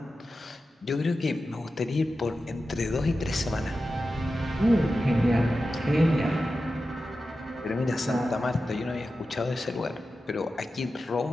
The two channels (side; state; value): both; normal; correlation 0.92